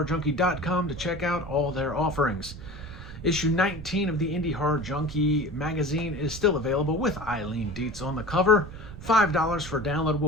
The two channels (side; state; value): right; noise; rumble, 13 dB below the sound